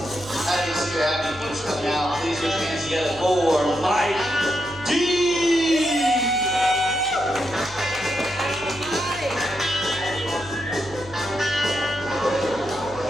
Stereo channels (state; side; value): noise; right; hum, 18 dB below the sound